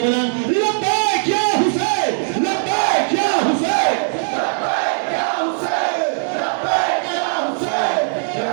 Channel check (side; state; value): left; silent; digital silence